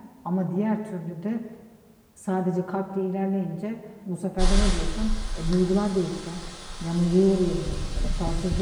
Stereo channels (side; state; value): both; identical; correlation 1.00